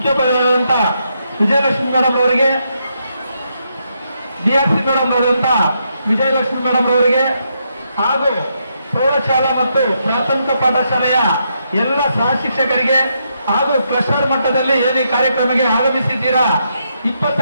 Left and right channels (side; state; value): both; inverted; correlation -0.79